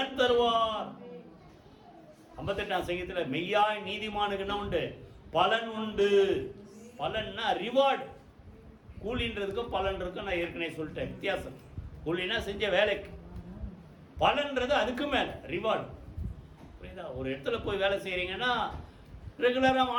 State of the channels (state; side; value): identical; both; correlation 1.00